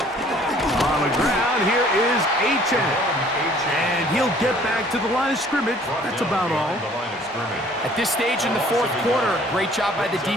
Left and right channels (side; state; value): both; normal; correlation 0.56